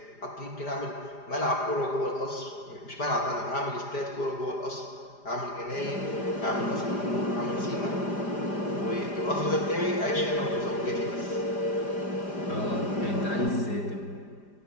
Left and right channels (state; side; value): late; right; 4.9 ms